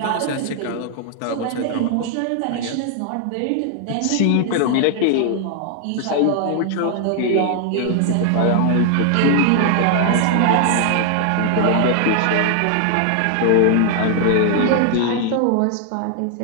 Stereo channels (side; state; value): both; different; correlation 0.00